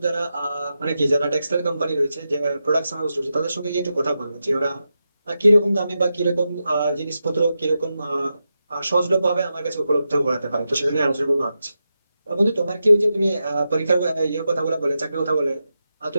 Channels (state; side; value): inverted; both; correlation -0.89